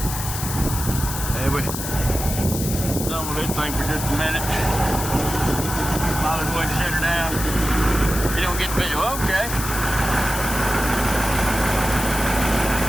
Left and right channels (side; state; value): left; noise; hiss, 6 dB below the sound